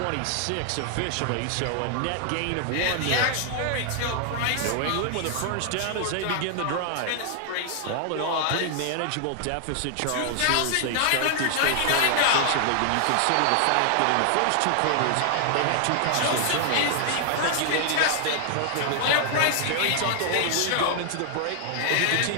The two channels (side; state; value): both; different; correlation 0.00